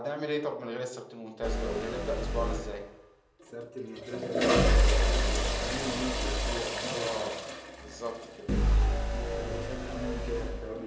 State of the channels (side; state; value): both; identical; correlation 1.00